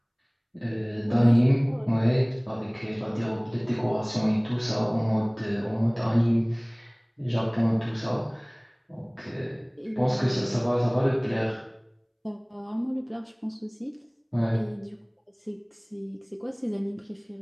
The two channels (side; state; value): both; identical; correlation 1.00